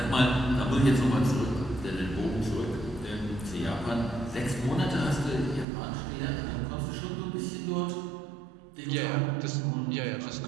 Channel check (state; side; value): drops out; left; at 5.7 s